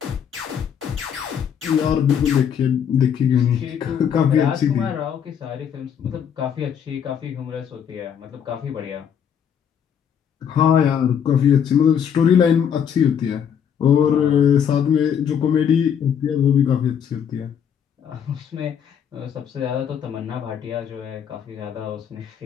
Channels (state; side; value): quieter; right; 8.2 dB